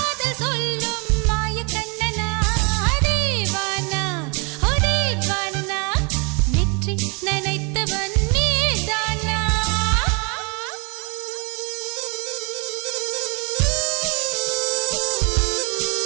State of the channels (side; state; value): left; quieter; 32.5 dB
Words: சொல்லும் மாய கண்ணனா தீவானா ஹோ தீவானா நெற்றி நனைத்தவன் நீதானா